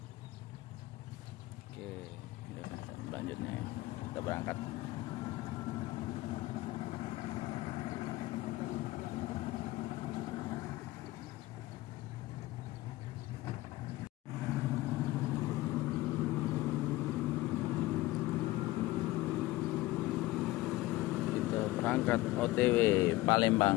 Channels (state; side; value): quieter; right; 18.3 dB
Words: Oke, selanjutnya ya, kita berangkat. Berangkat OTW